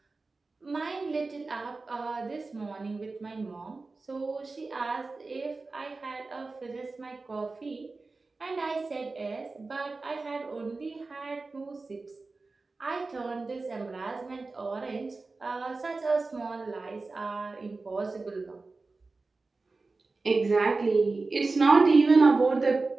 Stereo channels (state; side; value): quieter; left; 3.7 dB